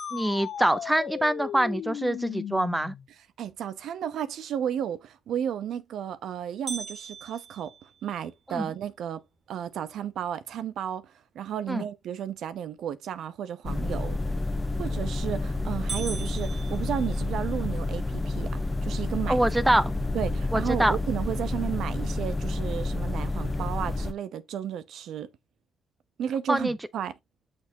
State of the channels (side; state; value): both; normal; correlation 0.86